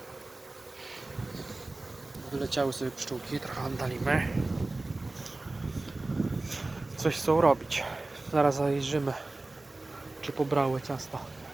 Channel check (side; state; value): left; quieter; 3.0 dB